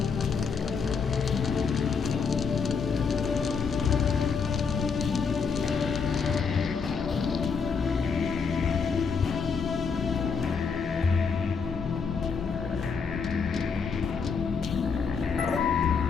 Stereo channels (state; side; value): quieter; right; 5.6 dB